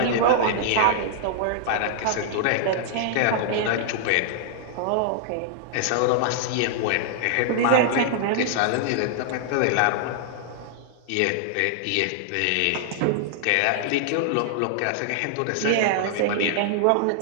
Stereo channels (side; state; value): both; different; correlation -0.01